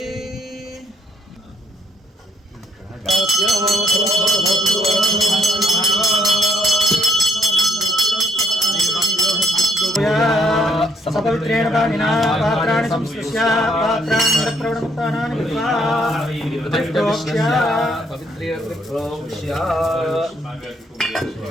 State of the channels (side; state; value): both; normal; correlation 0.69